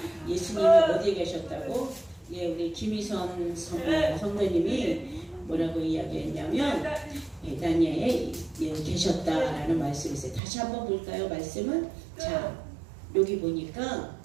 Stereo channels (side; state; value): left; drops out; at 10.4 s